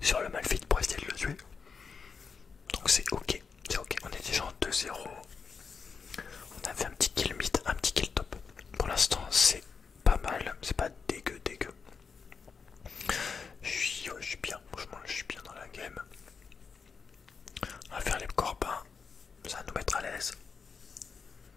le Malphite pour essayer de le tuer. Donc c'est ok, on est déjà en 2-0. On a fait un petit kill mid, un petit kill top. Pour l'instant, c'est pas mal, c'est pas dégueu. Je suis bien, franchement, je suis bien dans la game. On va faire les corbins, ça va nous mettre à l'aise.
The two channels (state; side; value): quieter; right; 5.6 dB